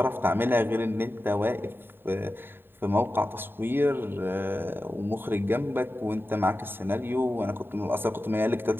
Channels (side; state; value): left; late; 0.10 ms